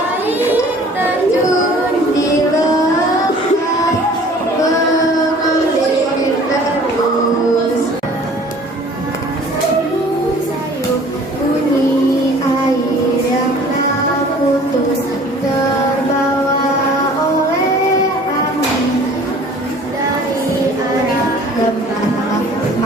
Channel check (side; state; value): both; normal; correlation 0.50